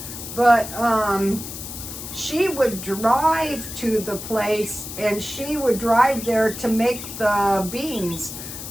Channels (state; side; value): noise; left; hiss, 10 dB below the sound